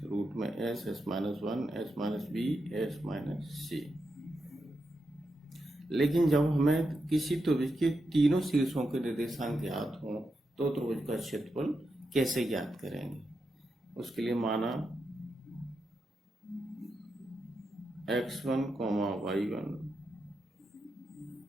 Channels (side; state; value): both; normal; correlation 0.86